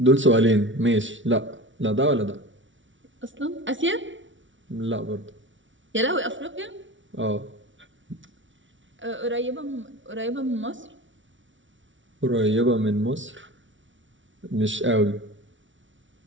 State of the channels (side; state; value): left; late; 0.56 ms